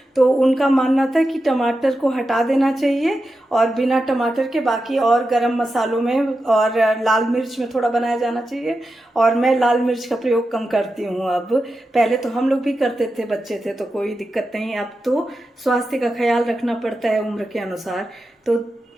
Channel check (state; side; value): normal; both; correlation 0.90